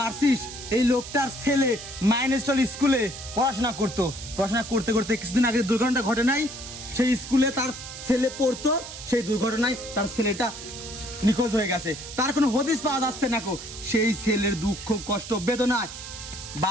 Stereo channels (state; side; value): noise; right; hiss, 11 dB below the sound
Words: এই লোকটার ছেলে মাইনেস্টল স্কুলে পড়াশোনা করতে করতে কিছুদিন আগে দুর্ঘটনা ঘটে নাই সেই স্কুলে তার ছেলে পড়তো সেই দুর্ঘটনায় তার ছেলেটা নিখোঁজ হয়ে গেছে তার কোনো হদিস পাওয়া যাচ্ছে না কো সেই ছেলের দুঃখ কষ্ট বেদনায়